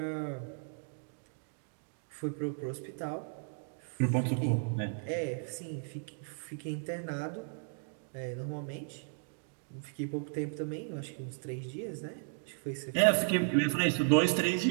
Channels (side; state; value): left; silent; digital silence